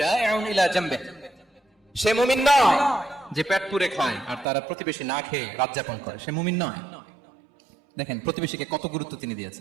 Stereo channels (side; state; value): left; drops out; at 4.5 s